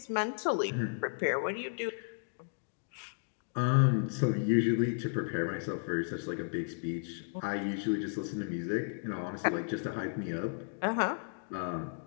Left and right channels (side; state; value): right; silent; digital silence